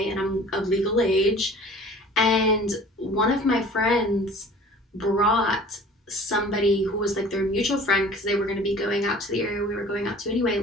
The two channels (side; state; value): both; normal; correlation 0.46